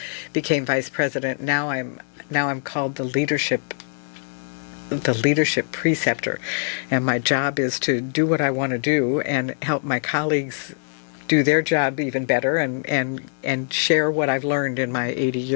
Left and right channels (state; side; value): silent; right; digital silence